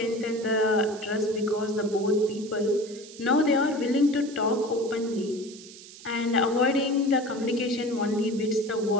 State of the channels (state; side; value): noise; right; hiss, 18 dB below the sound